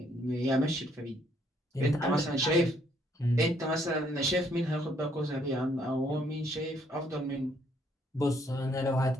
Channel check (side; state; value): both; normal; correlation 0.68